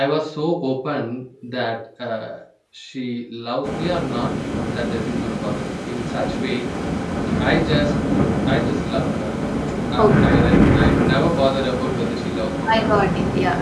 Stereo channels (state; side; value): identical; both; correlation 1.00